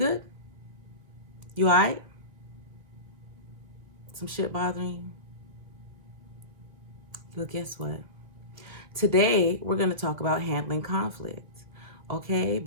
You alright? Some shit bothering you? Well, guess what? Today, we're going to talk about handling conflict, okay?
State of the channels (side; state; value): left; late; 1.9 ms